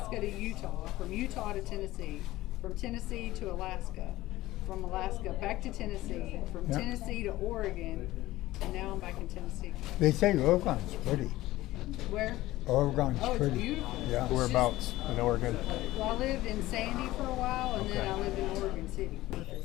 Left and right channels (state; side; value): quieter; right; 17.0 dB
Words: to Utah, from Utah to Tennessee, from Tennessee to Alaska, from Alaska back to Tennessee, from Yeah. Tennessee to Oregon, and now I'm back in Tennessee. They say Oregon's pretty. Where? Oregon's Oh, it's pretty. beautiful. Yeah. Whereabouts in Oregon? Well, I lived in Sandy for a while, and then Okay. I lived in Oregon City.